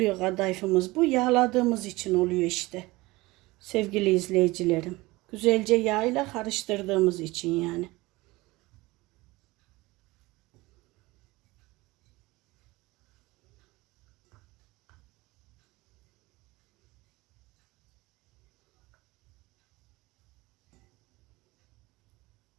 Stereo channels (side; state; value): left; quieter; 21.1 dB